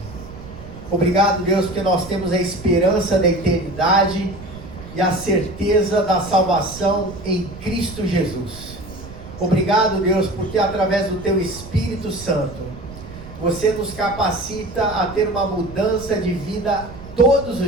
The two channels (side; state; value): right; noise; rumble, 15 dB below the sound